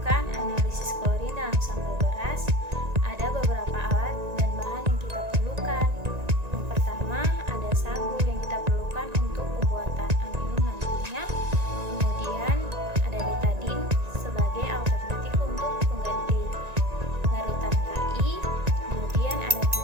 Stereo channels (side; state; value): left; late; 1.9 ms